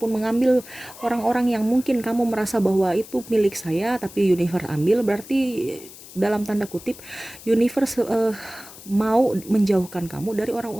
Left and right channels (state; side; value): noise; left; hiss, 17 dB below the sound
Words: mengambil orang-orang yang mungkin kamu merasa bahwa itu milik saya, tapi universe ambil, berarti dalam tanda kutip universe mau menjauhkan kamu dari